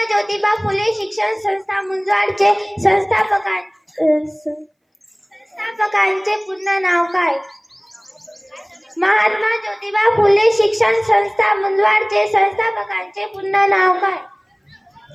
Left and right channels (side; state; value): both; identical; correlation 1.00